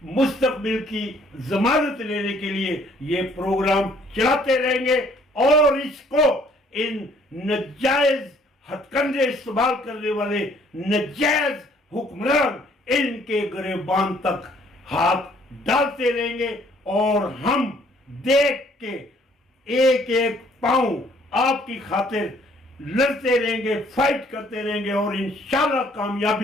مستقبل کی ضمانت لینے کے لیے یہ پروگرام چلاتے رہیں گے, اور اس کو ان ناجائز ہتھ کنڈے استعمال کرنے والے ناجائز حکمران ان کے گریبان تک ہاتھ ڈالتے رہیں گے. اور ہم دیکھ کے ایک ایک پاؤں آپ کی خاطر لڑتے رہیں گے, فائٹ کرتے رہیں گے, اور انشاءاللہ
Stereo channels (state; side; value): normal; both; correlation 0.61